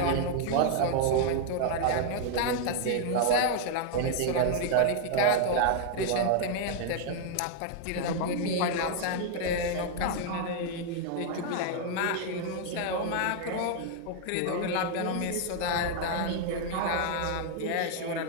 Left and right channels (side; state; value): both; different; correlation 0.00